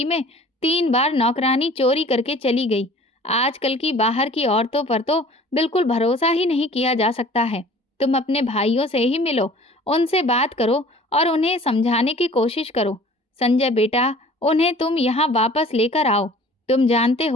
में 3 बार नौकरानी चोरी करके चली गई। आजकल की बाहर की औरतों पर तो बिल्कुल भरोसा ही नहीं किया जा सकता है। तुम अपने भाइयों से ही मिलो, उनसे बात करो और उन्हें समझाने की कोशिश करो। संजय बेटा, उन्हें तुम यहाँ वापस लेकर आओ। तुम जानते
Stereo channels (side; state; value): both; normal; correlation 0.48